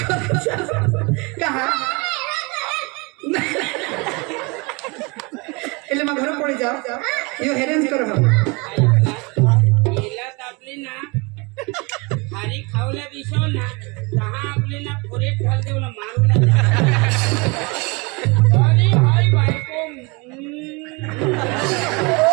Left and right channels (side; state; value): left; quieter; 28.5 dB